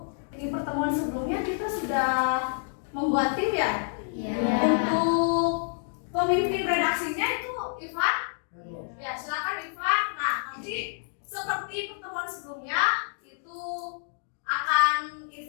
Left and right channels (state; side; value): silent; right; digital silence